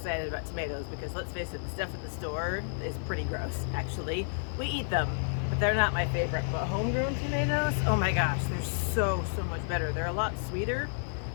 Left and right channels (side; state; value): right; silent; 57 dB below the other